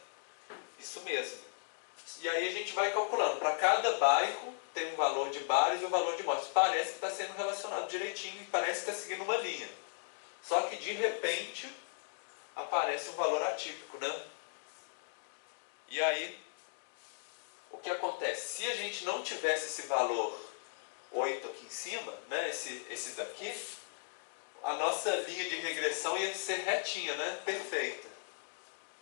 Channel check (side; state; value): right; silent; digital silence